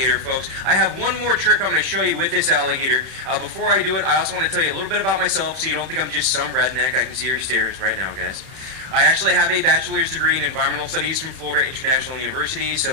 folks. I have one more trick I'm going to show you with this alligator. Before I do it, I also want to tell you a little bit about myself so you don't think I'm just some redneck. I can see your stares right now, guys. I actually have a bachelor's degree in environmental studies from Florida International University,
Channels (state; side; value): late; left; 31 ms